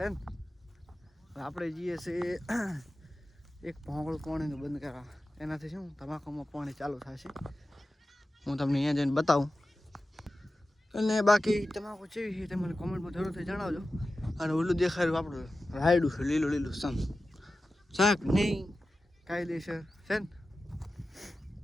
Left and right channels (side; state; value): both; normal; correlation 0.94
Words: ને. આપણે જઈએ છીએ એક ભોંગળું પાણીનું બંધ કરવા. એનાથી શું તમાકુમાં પાણી ચાલુ થશે. હું તમને અહીંયા જઈને બતાવું. અને બાકી તમાકુ કેવી છે તે મને કોમેન્ટમાં જરૂરથી જણાવજો. અને ઓલું દેખાડ્યું આપણું રાયડું છે, લીલું લીલું સમ શાક નહીં કાયદેસર છે ને.